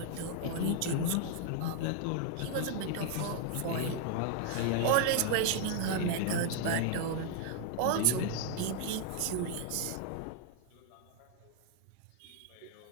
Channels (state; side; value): different; both; correlation 0.00